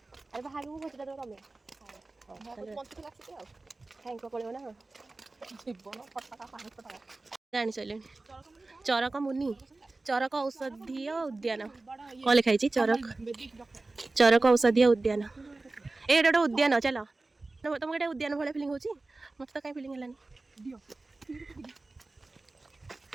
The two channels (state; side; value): quieter; left; 3.3 dB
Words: अरे बाहाबी मो भोजन दाও तमे बंसकुल आसी आ थैंक को पड़ियो ना जीवन फटका पानी फटका जानी चले चरक मुनि चरक औषधीय उद्यान कौन लिखाई चरक औषधीय उद्यान एटा उद्यान चलो तुमको एटा उद्यान भाई फिलिंग होची मत तो कहीं फिलिंग हलानी